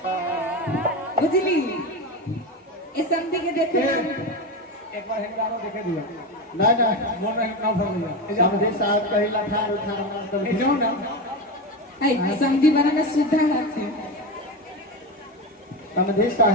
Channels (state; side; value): normal; both; correlation 0.19